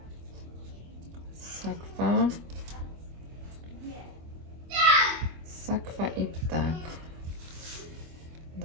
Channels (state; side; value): late; left; 24 ms